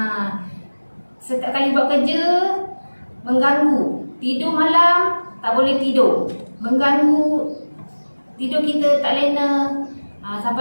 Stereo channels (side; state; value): both; inverted; correlation -1.00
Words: Setiap kali buat kerja mengganggu. Tidur malam tak boleh tidur, mengganggu tidur kita tak lena.